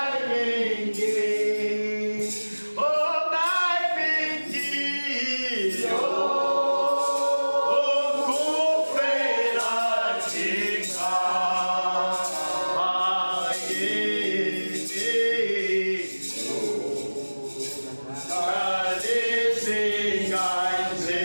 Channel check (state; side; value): inverted; both; correlation -1.00